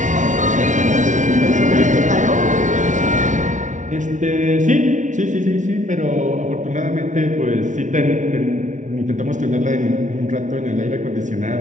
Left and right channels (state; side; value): late; left; 0.36 ms